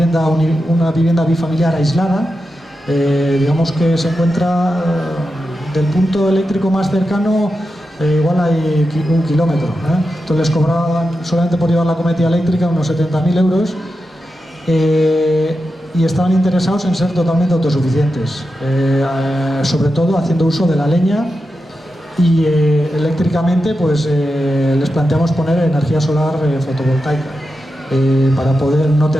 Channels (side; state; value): both; normal; correlation 0.90